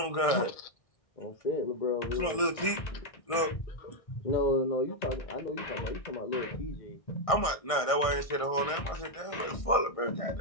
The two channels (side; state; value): right; late; 1.6 ms